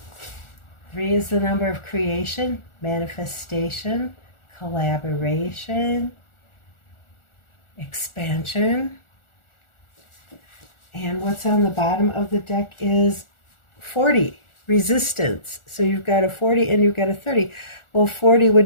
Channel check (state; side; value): late; right; 1.4 ms